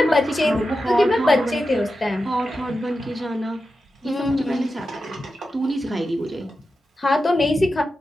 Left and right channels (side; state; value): both; normal; correlation 0.91